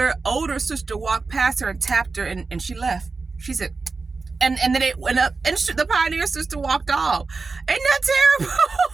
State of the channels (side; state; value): left; quieter; 4.1 dB